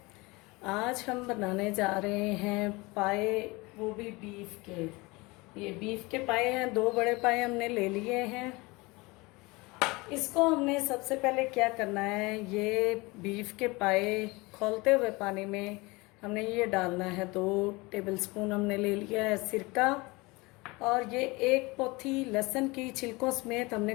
आज हम बनाने जा रहे हैं पाए, वो भी बीफ के। ये बीफ के पाए हैं, 2 बड़े पाए हमने ले लिए हैं। इसको हमने सबसे पहले क्या करना है, ये बीफ के पाए खौलते हुए पानी में हमने ये डालना है। 2 टेबलस्पून हमने ले लिया है सिरका, और ये 1 पोथी लहसुन की छिलकों समेत हमने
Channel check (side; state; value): right; quieter; 24.1 dB